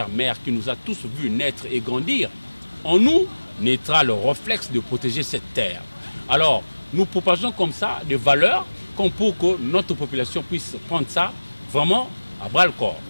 qui nous a tous vus naître et grandir, en nous naîtra le réflexe de protéger cette terre. Alors, nous propageons comme ça des valeurs comme pour que notre population puisse prendre ça vraiment à bras-le-corps.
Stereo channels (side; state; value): both; inverted; correlation -1.00